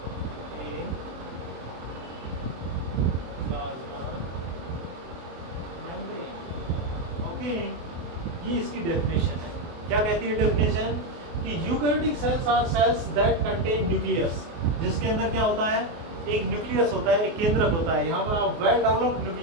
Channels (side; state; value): left; late; 24 ms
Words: a plasma membrane। Okay, ये इसकी डेफिनेशन है। क्या कहती है डेफिनेशन कि eukaryotic cells are cells that contain nucleus, जिसके अंदर क्या होता है, एक न्यूक्लियस होता है, एक केंद्रक होता है। यहाँ पर आप वेल डेवलप्ड